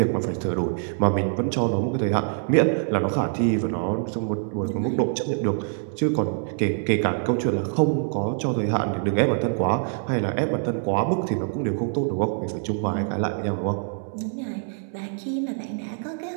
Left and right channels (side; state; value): left; silent; 62 dB below the other